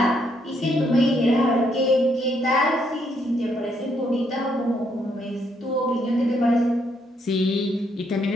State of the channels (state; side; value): normal; both; correlation 0.73